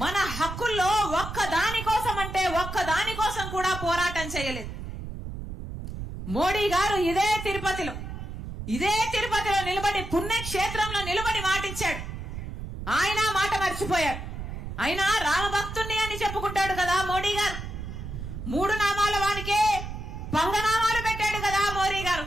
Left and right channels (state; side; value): noise; right; rumble, 8 dB below the sound